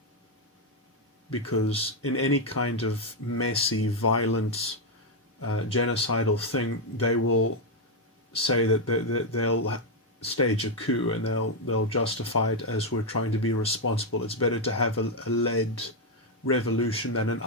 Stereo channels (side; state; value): both; normal; correlation 0.02